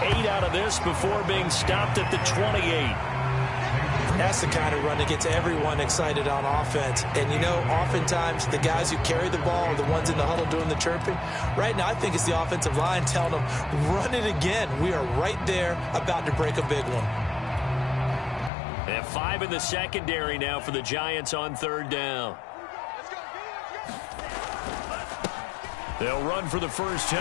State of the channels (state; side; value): drops out; right; at 18.5 s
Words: 8 out of this before being stopped at the 28. That's the kind of run that gets everyone excited on offense. And, you know, oftentimes the guys who carry the ball are the ones in the huddle doing the chirping. Right now, I think it's the offensive line telling them, run it again. We are right there about to break a big one. And 5 in the secondary now for the Giants on 3rd down. They'll run for the first